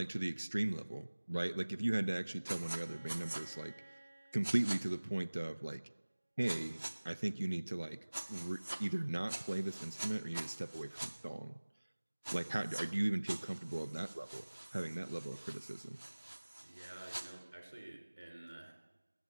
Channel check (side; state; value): both; inverted; correlation -1.00